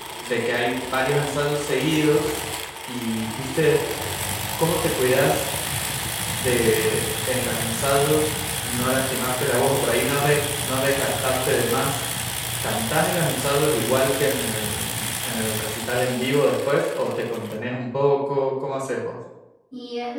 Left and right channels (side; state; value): both; identical; correlation 1.00